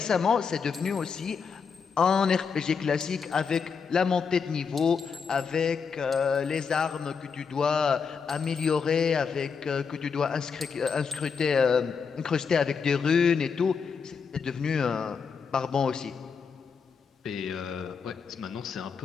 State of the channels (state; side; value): quieter; right; 5.9 dB